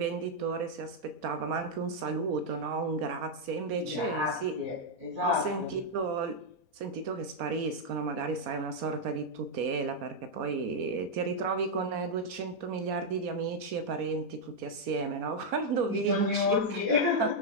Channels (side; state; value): left; late; 4.2 ms